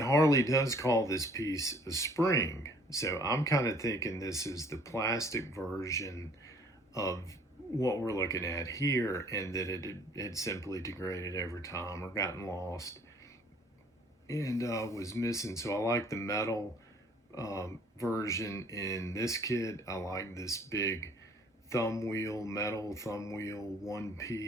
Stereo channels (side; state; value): both; normal; correlation 0.57